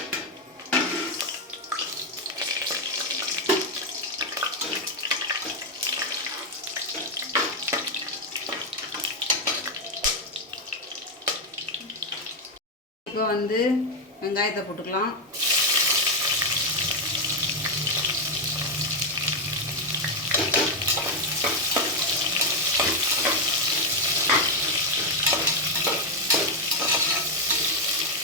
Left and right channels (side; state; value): both; normal; correlation 0.03